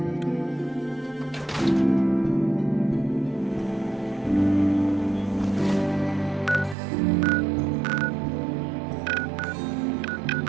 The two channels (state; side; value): drops out; left; at 6.8 s